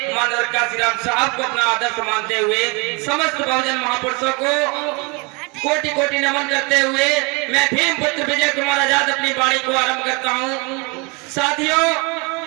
मानव काशीराम साहब को अपना आदर्श मानते हुए समस्त बहुजन महापुरुषों को कोटि कोटि नमन करते हुए मैं भीम पुत्र विजय कुमार आजाद अपनी वाणी को आरंभ करता हूँ। साथियों,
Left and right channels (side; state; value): left; quieter; 29.7 dB